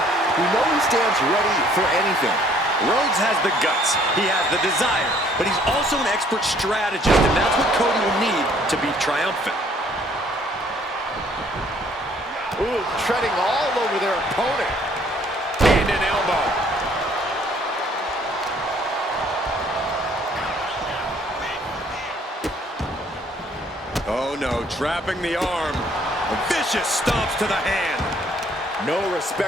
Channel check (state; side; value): normal; both; correlation 0.61